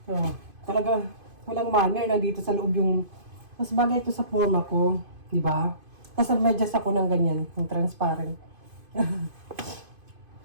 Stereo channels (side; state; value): left; late; 2.5 ms